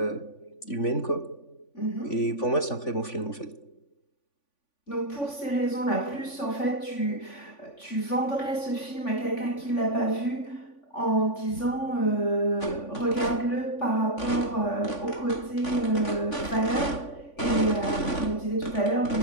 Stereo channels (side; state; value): right; late; 3.5 ms